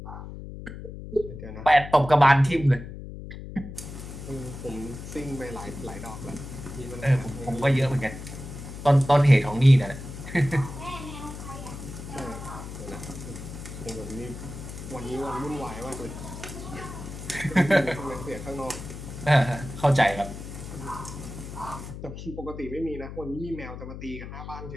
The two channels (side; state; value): left; noise; hum, 10 dB below the sound